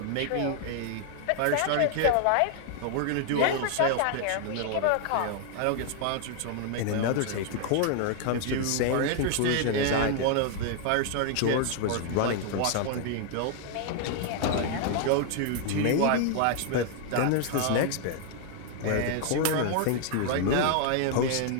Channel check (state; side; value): different; both; correlation 0.00